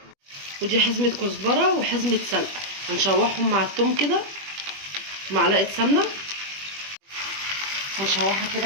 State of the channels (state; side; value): late; left; 21 ms